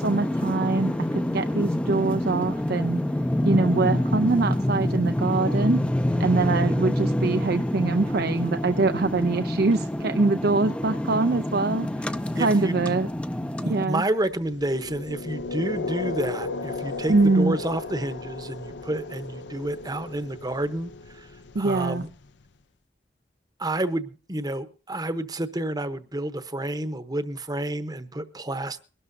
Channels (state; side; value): normal; both; correlation 0.61